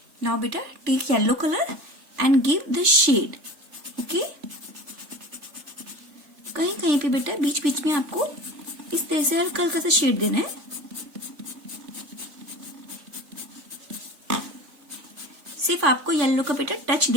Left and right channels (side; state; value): left; late; 3.5 ms